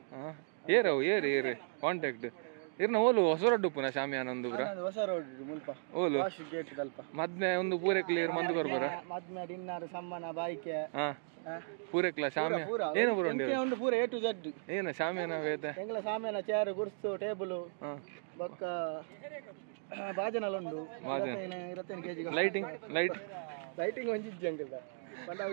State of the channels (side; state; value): left; silent; digital silence